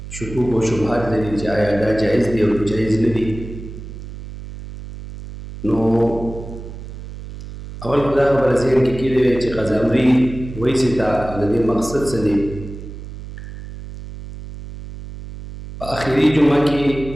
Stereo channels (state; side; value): noise; right; hum, 12 dB below the sound